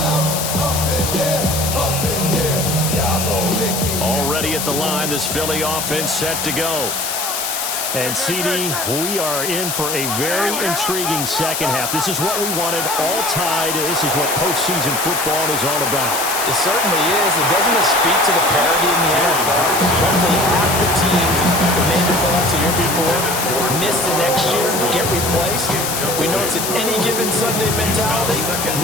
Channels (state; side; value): noise; left; hiss, 2 dB below the sound